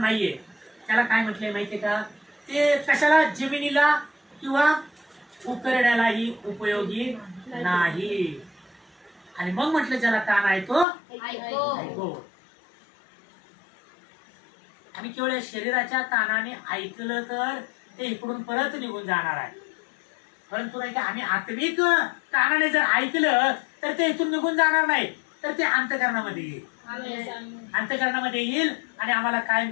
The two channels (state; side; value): drops out; right; at 10.9 s